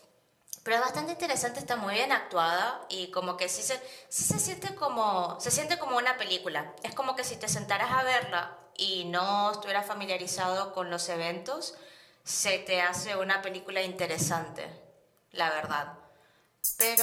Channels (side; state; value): both; identical; correlation 1.00